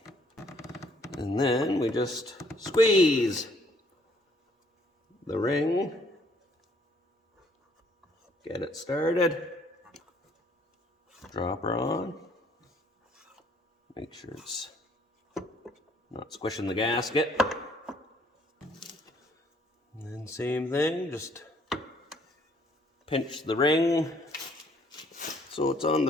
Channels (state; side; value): normal; both; correlation 0.63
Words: and then we just squeeze the ring, get it started, drop her on, make sure it's not squishing the gasket. And then same thing, just pinch the ring so it's on